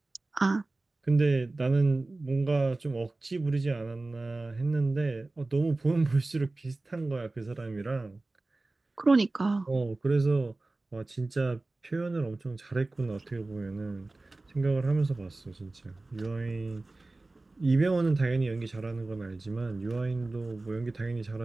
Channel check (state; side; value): quieter; left; 3.1 dB